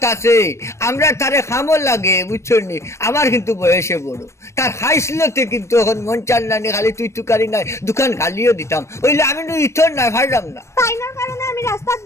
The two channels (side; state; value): right; late; 0.13 ms